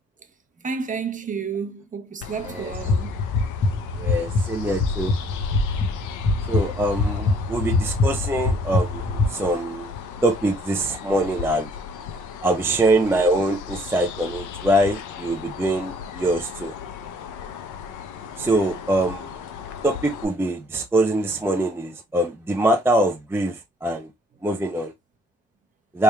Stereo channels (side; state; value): both; normal; correlation 0.61